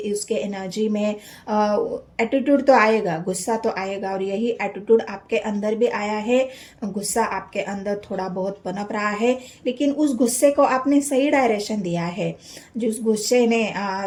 एनर्जी में एटीट्यूड तो आएगा, गुस्सा तो आएगा। और यही एटीट्यूड आपके अंदर भी आया है, गुस्सा आपके अंदर थोड़ा बहुत पनप रहा है, लेकिन उस गुस्से को आपने सही डायरेक्शन दिया है। जिस गुस्से ने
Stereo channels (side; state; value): both; identical; correlation 1.00